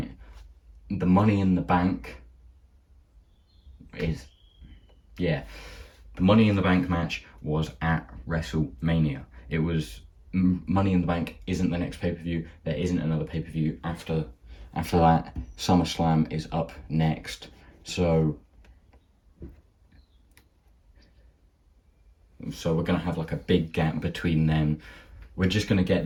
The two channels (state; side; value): identical; both; correlation 1.00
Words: The Money in the Bank the Money in the Bank match was at WrestleMania. It was Money in the Bank isn't the next pay-per-view. There isn't another pay-per-view after that. SummerSlam is up next. So we're going to have like a big gap between them. We're just going to get